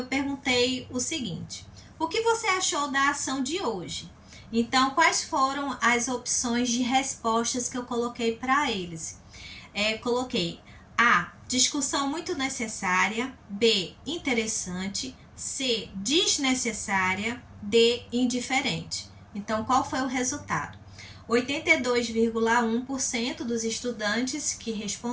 perguntei o seguinte: o que você achou da ação de hoje? Então, quais foram as opções de respostas que eu coloquei para eles? Coloquei A, discussão muito necessária, B, interessante, C, desnecessária, D, indiferente. Então, qual foi o resultado? 82,1% dos estudantes que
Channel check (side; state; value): both; identical; correlation 1.00